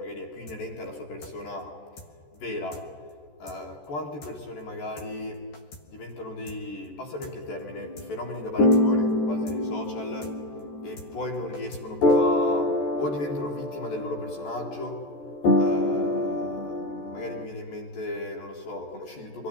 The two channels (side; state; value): right; late; 14 ms